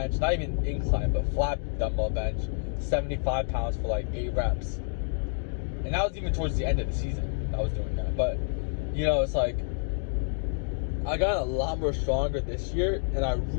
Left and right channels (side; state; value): right; silent; 59 dB below the other